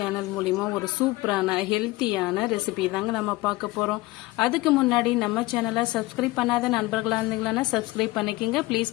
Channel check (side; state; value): right; quieter; 20.4 dB